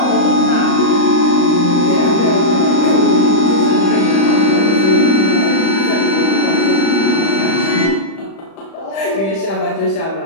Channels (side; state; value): right; late; 36 ms